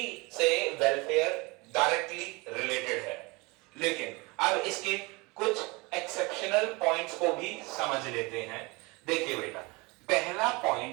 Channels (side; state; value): left; quieter; 25.9 dB